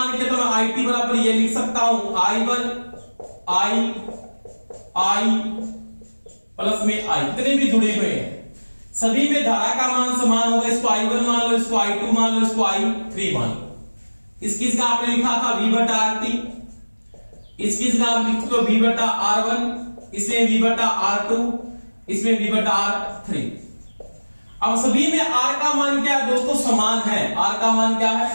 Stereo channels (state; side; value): inverted; both; correlation -1.00